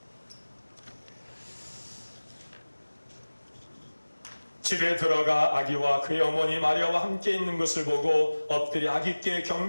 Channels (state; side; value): inverted; both; correlation -1.00